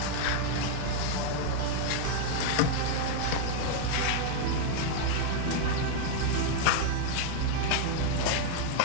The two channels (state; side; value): different; both; correlation 0.00